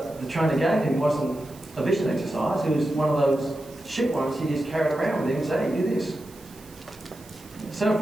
the trainer gave him wasn't a vision exercise, it was one of those shit ones he just carried around with him and said, hey, do this. So if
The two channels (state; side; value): noise; right; hiss, 23 dB below the sound